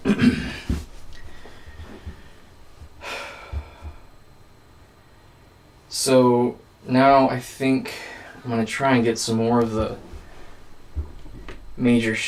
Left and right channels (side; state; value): both; identical; correlation 1.00